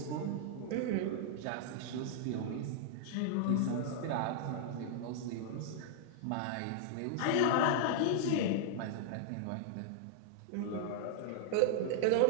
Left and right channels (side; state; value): both; different; correlation -0.01